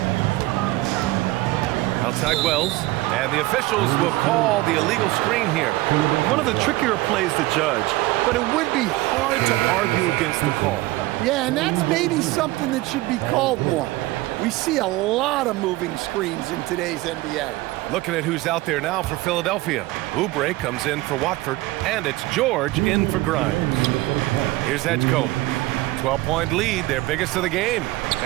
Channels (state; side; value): quieter; left; 18.9 dB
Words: Outside Wells. And the officials will call the illegal screen here. One of the trickier plays to judge, but it would be hard to argue against the call. Yeah, and that's maybe something that should be called more. We see a lot of moving screens in today's NBA. Looking at who's out there now for Philadelphia. Oubre comes in for Watford, and it's George in for Grimes. Here's Edgecombe. 12-point lead, their biggest of the game.